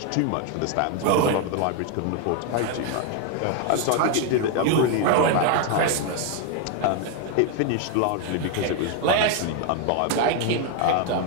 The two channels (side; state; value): both; different; correlation 0.00